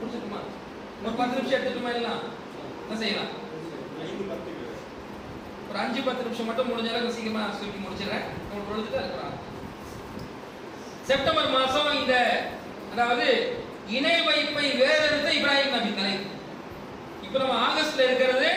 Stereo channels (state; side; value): identical; both; correlation 1.00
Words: ஒரு 10 நிமிஷம் எடுத்துட்டுமா? எல்லாம் என்ன செய்யலாம்? ஒரு 5-10 நிமிஷம் மட்டும் முடிஞ்ச அளவுக்கு சீக்கிரமா சொல்லி முடிச்சிடறேன். தொழுதுட்டு இருக்கிறாங்க. செப்டம்பர் மாசம் இந்த அதாவது இணை வைப்பை வேறெடுத்த இப்ராஹிம் நபி தலைப்பு. இப்ப நம்ம ஆகஸ்ட்ல இருக்கிறது